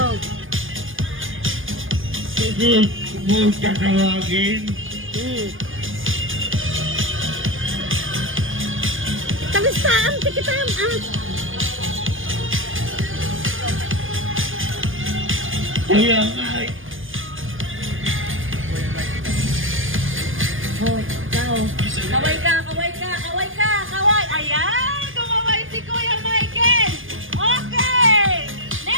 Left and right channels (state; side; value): late; left; 0.59 ms